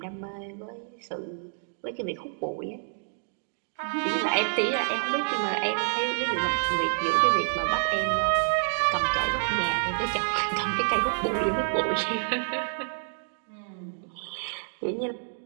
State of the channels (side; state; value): left; silent; digital silence